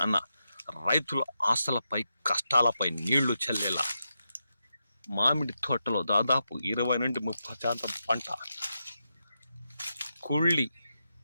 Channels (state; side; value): inverted; both; correlation -0.86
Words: అన్న రైతుల ఆశలపై కష్టాలపై నీళ్లు చల్లేలా మామిడి తోటలో దాదాపు 20 నుండి 30% పంట కుళ్ళి